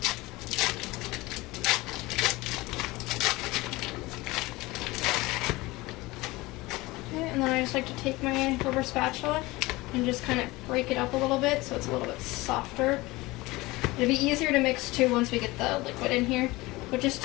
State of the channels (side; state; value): right; quieter; 21.0 dB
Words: And then I just like to take my rubber spatula and just kind of break it up a little bit so it's a little bit softer. It'll be easier to mix too once we get the liquid in here, but just